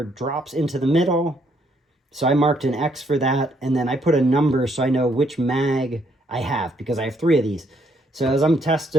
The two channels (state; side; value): normal; both; correlation 0.71